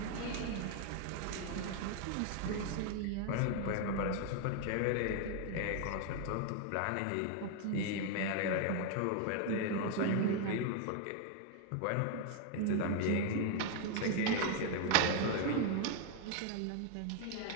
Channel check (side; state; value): both; different; correlation 0.01